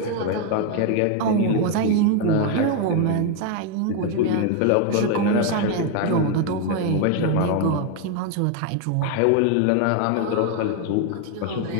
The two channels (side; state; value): both; different; correlation 0.01